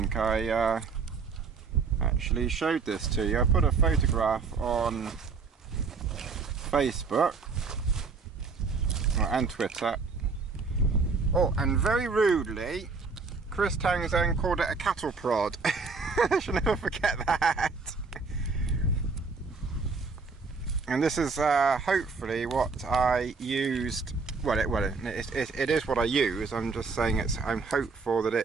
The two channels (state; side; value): quieter; left; 4.7 dB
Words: I actually showed this to you. I put a photograph on Facebook and Twitter. Oh, and very rudely, Chris Townsend called it a cattle prod. I shall never forget that. And this is hopefully what I used. Well, it is what I use. I'm just saying I'm hopeful that